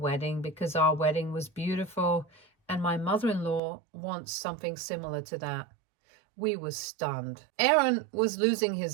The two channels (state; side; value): drops out; left; at 3.6 s